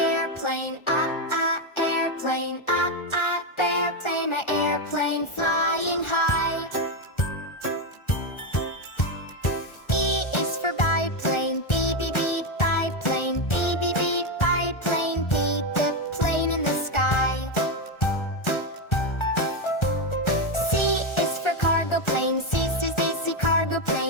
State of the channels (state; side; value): late; right; 1.4 ms